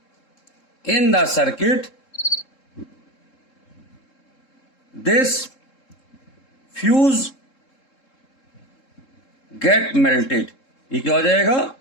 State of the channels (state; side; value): late; right; 3.7 ms